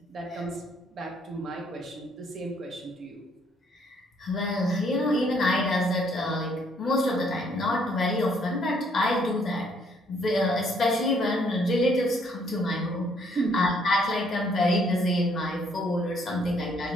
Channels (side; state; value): both; normal; correlation 0.67